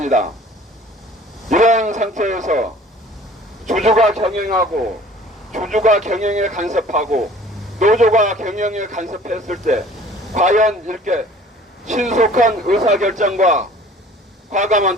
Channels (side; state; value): both; normal; correlation 0.49